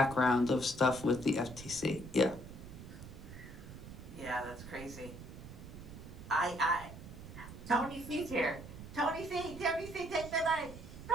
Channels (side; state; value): right; noise; rumble, 13 dB below the sound